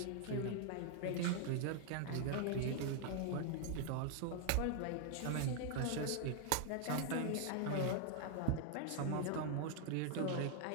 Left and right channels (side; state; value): both; different; correlation 0.00